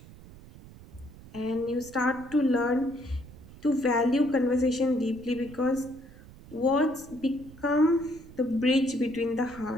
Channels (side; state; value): right; noise; rumble, 19 dB below the sound